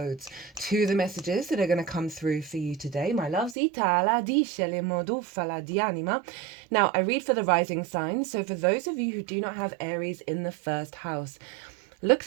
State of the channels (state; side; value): drops out; left; at 3.6 s